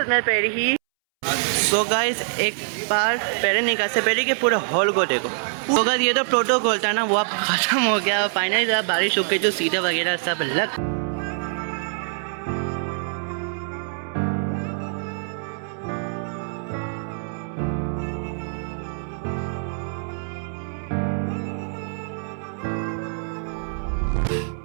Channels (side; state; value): left; silent; 62 dB below the other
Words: मिनट पहले ही। तो गाइस एक बार पहले निकाल से पहले के पूरे हॉल को देखो। तो गाइस ये तो प्रोटोकॉल था ना, वो अब ख़त्म हो गया। फाइनली बारिश हो गई, जो सीधे वगैरह सब लग।